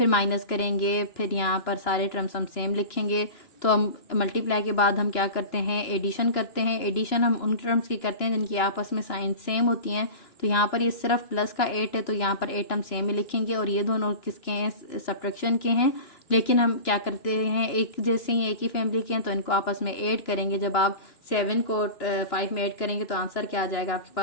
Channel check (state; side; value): late; right; 2.9 ms